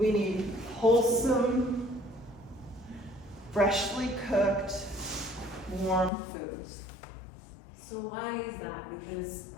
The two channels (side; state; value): right; drops out; at 6.1 s